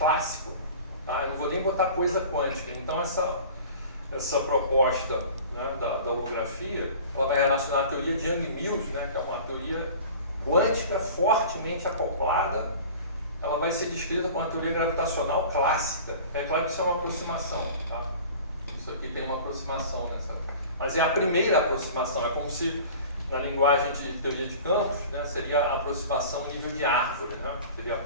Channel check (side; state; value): both; inverted; correlation -0.41